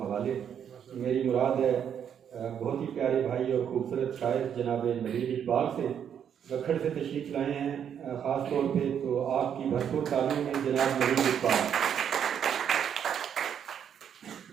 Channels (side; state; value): left; quieter; 8.5 dB